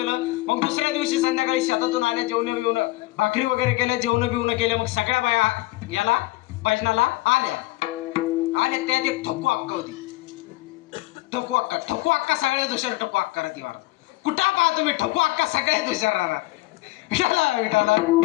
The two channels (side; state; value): right; quieter; 20.1 dB